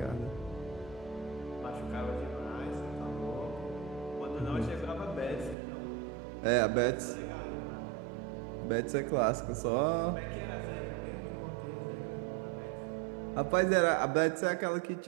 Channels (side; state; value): left; drops out; at 5.6 s